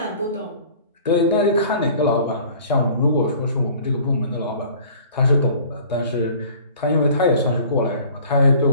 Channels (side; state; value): both; inverted; correlation -0.49